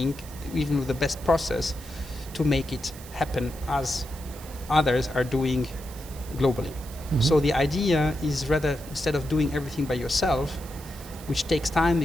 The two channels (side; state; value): right; noise; hiss, 17 dB below the sound